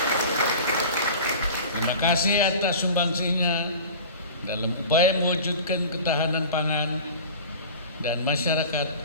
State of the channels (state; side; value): inverted; both; correlation -0.38